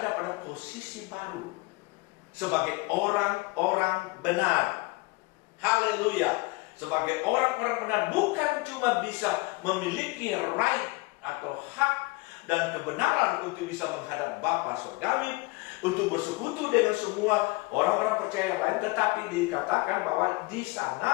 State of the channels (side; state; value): right; quieter; 24.3 dB